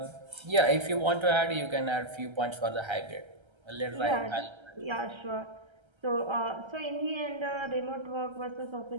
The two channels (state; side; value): late; left; 1.3 ms